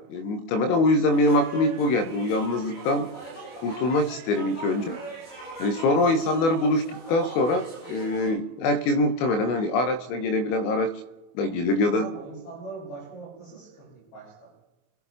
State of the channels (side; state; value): right; late; 24 ms